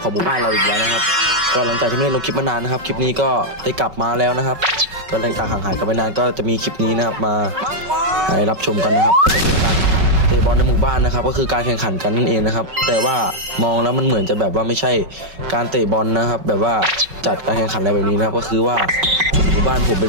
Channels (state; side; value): late; left; 5.3 ms